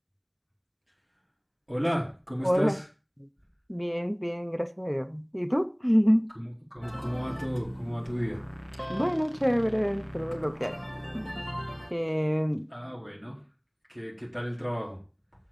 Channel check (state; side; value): identical; both; correlation 1.00